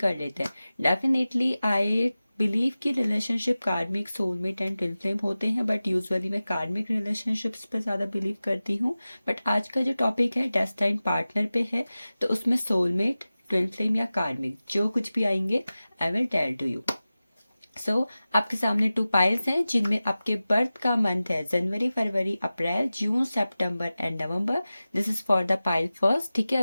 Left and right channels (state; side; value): inverted; both; correlation -0.96